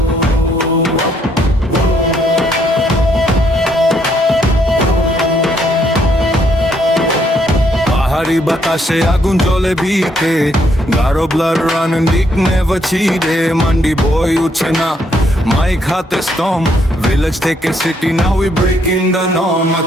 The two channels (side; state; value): both; normal; correlation 0.72